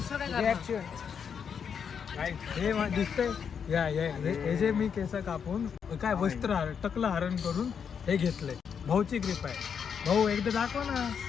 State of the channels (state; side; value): quieter; right; 7.1 dB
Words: रिएक्शन काय हे दिसतंय या हे जे मी केस कापून काय वस्त्र टकलं हरण करून हे घेतलंय भाऊची ग्रीप आहे भाऊ एकदा दाखव ना